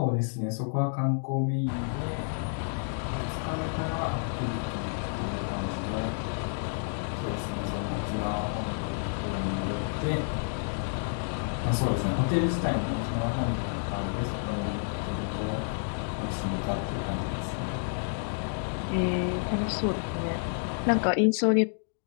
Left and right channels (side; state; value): right; silent; digital silence